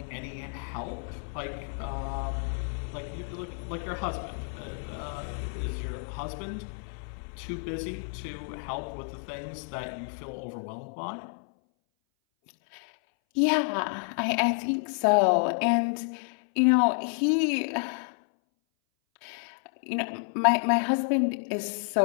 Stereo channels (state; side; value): silent; right; 58 dB below the other